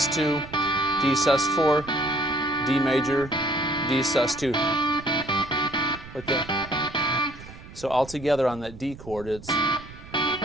D sus4, D major, D sus2. Like that. So all together on that D chord, it's and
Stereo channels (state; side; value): noise; right; rumble, 16 dB below the sound